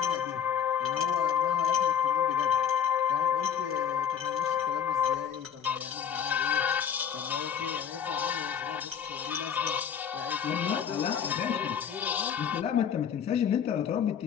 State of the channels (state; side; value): quieter; right; 8.4 dB